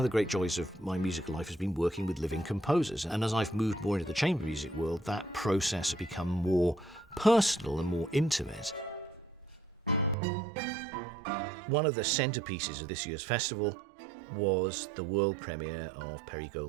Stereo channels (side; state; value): left; drops out; at 10.2 s